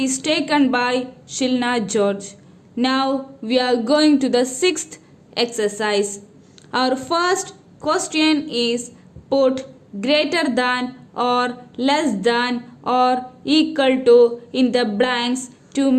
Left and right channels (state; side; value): identical; both; correlation 1.00